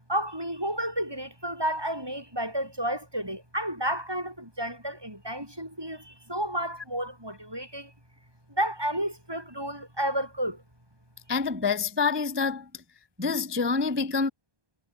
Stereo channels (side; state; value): left; late; 1.2 ms